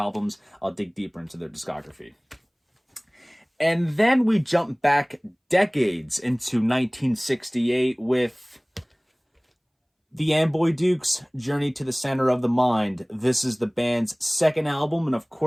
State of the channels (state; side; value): identical; both; correlation 1.00